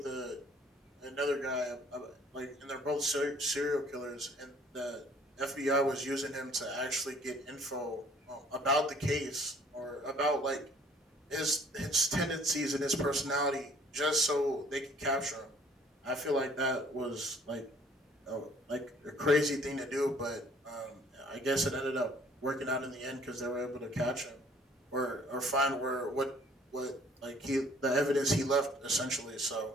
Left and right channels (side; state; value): both; normal; correlation 0.57